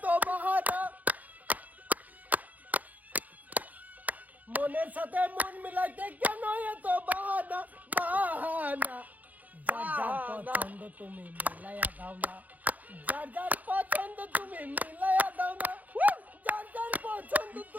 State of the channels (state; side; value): late; left; 0.078 ms